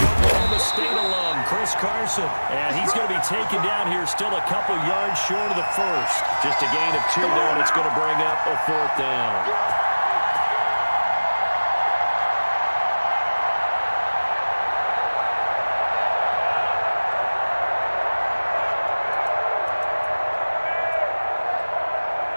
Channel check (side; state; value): both; inverted; correlation -1.00